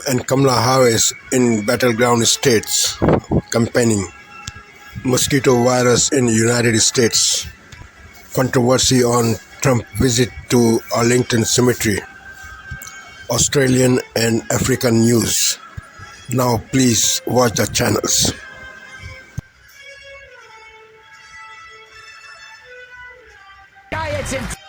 and Kamala Harris in battleground states campaigning. Mosquito virus in United States. Controversy on Trump visit to Arlington Cemetery. Australian and African news. Now please watch the channels.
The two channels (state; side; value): identical; both; correlation 1.00